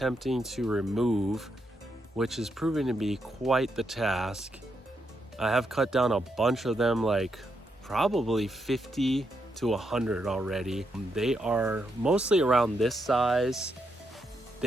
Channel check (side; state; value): both; normal; correlation 0.81